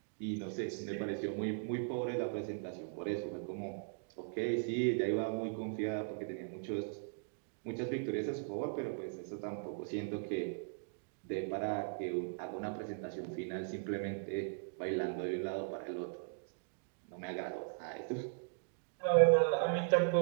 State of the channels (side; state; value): left; silent; digital silence